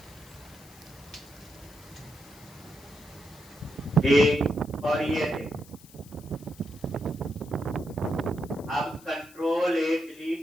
एक, और ये देखो अब कंट्रोल ए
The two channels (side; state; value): left; noise; hiss, 22 dB below the sound